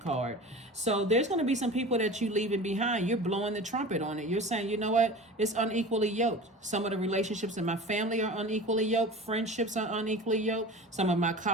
So there's going to be some people that you leaving behind. You're blowing the trumpet on it. You're saying, you know what? It's unequally yoked. Some of the relationships in my family are unequally yoked. Friendships are unequally yoked. Some of my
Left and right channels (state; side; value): normal; both; correlation 0.36